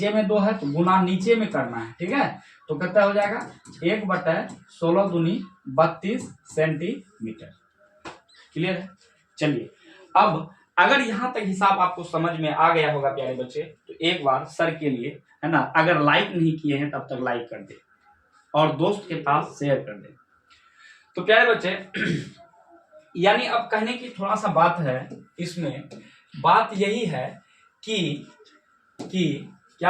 में 2 है तो गुना नीचे में करना है, ठीक है। तो कितना हो जाएगा 1/16 दूनी 32 सेंटीमीटर। क्लियर है। चलिए अब अगर यहाँ तक हिसाब आपको समझ में आ गया होगा प्यारे बच्चे, तो एक बार सर के लिए, है ना, अगर लाइक नहीं किए हैं तब तक लाइक कर दे और दोस्त के पास शेयर कर दे। तो प्यारे बच्चे यानी अब कहने की थोड़ा सा बात है इसमें, बात यही है कि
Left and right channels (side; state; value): both; identical; correlation 1.00